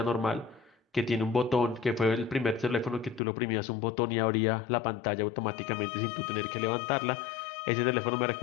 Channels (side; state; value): right; drops out; at 3.2 s